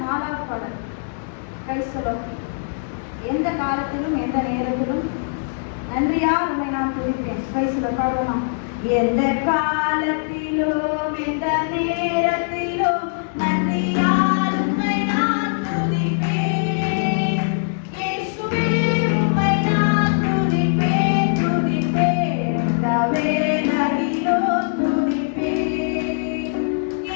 4வது பாடல். Praise the Lord. எந்த காலத்திலும் எந்த நேரத்திலும் நன்றியால் உம்மை நான் துதிப்பேன். பிரைஸ் பாடுவோம். எந்த காலத்திலும் எந்த நேரத்திலும்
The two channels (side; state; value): right; silent; digital silence